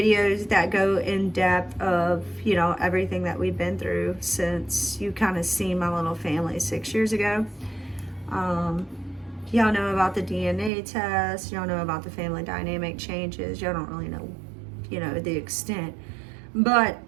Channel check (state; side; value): drops out; left; at 10.7 s